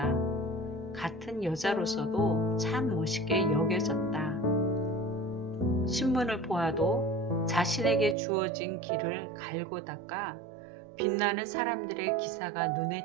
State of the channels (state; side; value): drops out; left; at 8.2 s